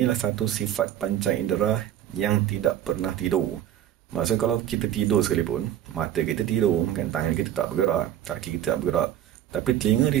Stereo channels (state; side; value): quieter; left; 11.5 dB